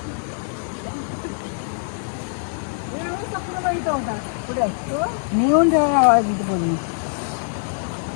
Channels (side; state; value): right; silent; digital silence